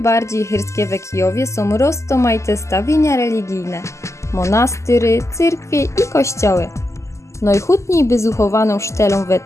chyrskie w Kijowie są rozmaite stawienia religijne, monastyry, cyrkwie i kościoły. Najchutniej wyzuchowaną sztelą we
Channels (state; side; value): late; right; 0.14 ms